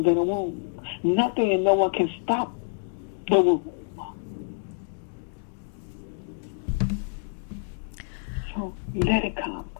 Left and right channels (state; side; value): silent; right; digital silence